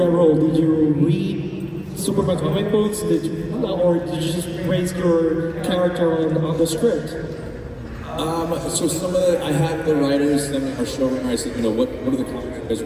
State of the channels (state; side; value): identical; both; correlation 1.00